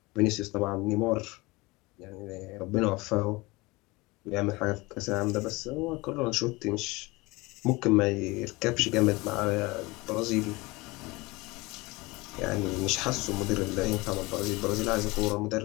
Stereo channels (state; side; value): quieter; right; 23.1 dB